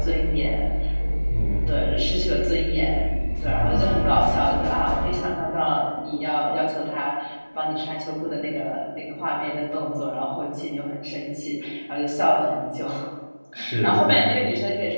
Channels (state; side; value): inverted; both; correlation -1.00